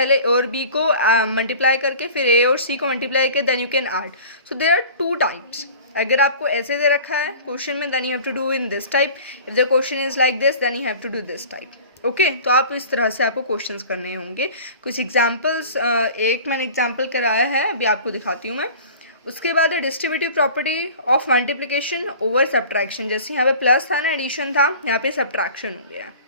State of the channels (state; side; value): inverted; both; correlation -0.42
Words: ए और बी को मल्टीप्लाई करके फिर ए और सी को मल्टीप्लाई करके then you can add. So there are 2 types. अगर आपको ऐसे दे रखा है क्वेश्चन में, then you have to do in this type. If the question is like this then you have to do this type. Okay, तो आप इस तरह से आपको क्वेश्चंस करने होंगे. कुछ एग्जांपल्स, एक मैंने एग्जांपल कराया है, अभी आपको दिखाती हूँ मैं. उसके बाद distributive property of multiplication over subtraction. जैसे यहाँ पे प्लस था ना, एडिशन था, यहाँ पे सब्ट्रैक्शन हो गया है.